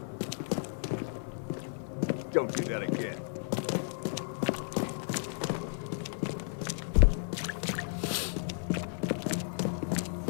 Don't do that again.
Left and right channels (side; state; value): right; silent; digital silence